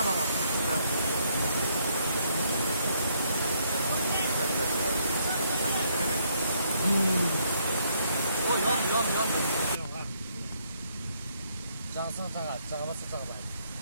aslında. O yan. Cansın çağa, çağırsa çağırlar.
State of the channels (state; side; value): inverted; both; correlation -0.71